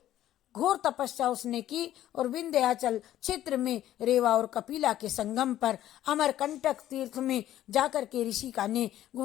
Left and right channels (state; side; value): quieter; right; 12.8 dB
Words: घोर तपस्या उसने की और विंध्याचल क्षेत्र में रेवा और कपिला के संगम पर अमरकंटक तीर्थ में जाकर के ऋषि का ने